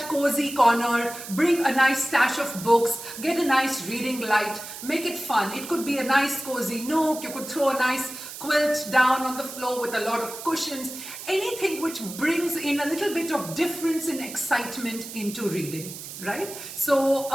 cozy corner, bring a nice stash of books, get a nice reading light, make it fun. It could be a nice cozy nook, you could throw a nice quilt down on the floor with a lot of cushions, anything which brings in a little bit of difference and excitement into reading, right? So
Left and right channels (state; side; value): noise; right; hiss, 11 dB below the sound